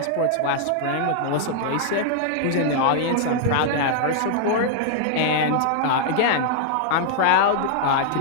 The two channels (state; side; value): different; both; correlation -0.01